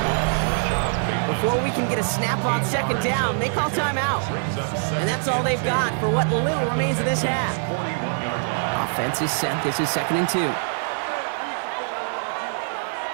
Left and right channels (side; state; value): left; silent; 63 dB below the other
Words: Before we can get a snap on 2nd down, they call timeout. And that's all they've got for what little remains of this half. Offense is set. This is 2nd and 2.